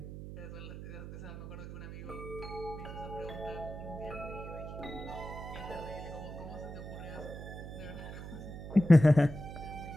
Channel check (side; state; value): right; noise; hum, 9 dB below the sound